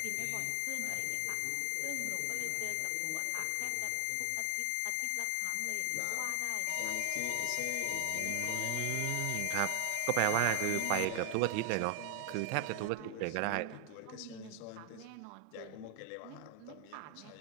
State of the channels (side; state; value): both; different; correlation 0.00